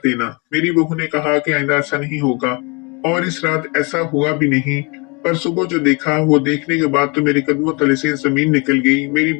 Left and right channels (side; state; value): right; quieter; 30.0 dB